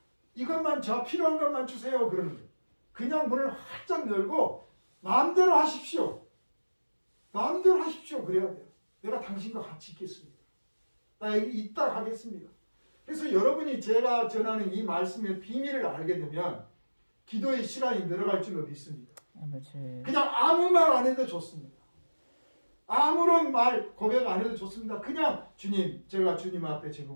이것만 저 필요한 것만 주세요. 그러는 거예요. 그냥 문을 활짝 열고 마음대로 하십시오. 마음대로 하십시오. 그래야 돼요. 내가 당신과 같이 있겠습니다. 나 여기 있다 가겠습니다. 그래서 여러분이 제가 전하는 이 말씀의 비밀을 알게 되면 기도의 시간이 늘어갈 줄로 믿습니다. 아버지. 그냥 아무 말 안 해도 좋습니다. 아무런 말 고백 안 해도 좋습니다. 그냥 주님, 제가 주님 앞에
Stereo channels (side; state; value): both; inverted; correlation -1.00